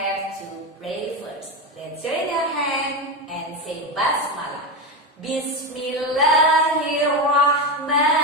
to pray first. Let's join our hand and say Basmalah.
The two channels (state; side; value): normal; both; correlation 0.16